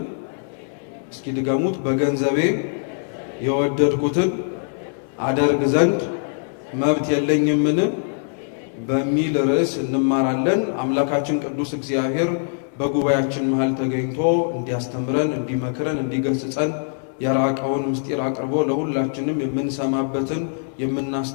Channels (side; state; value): right; silent; digital silence